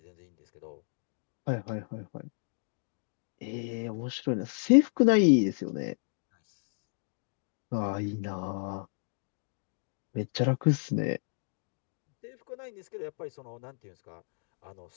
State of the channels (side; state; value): right; silent; 56 dB below the other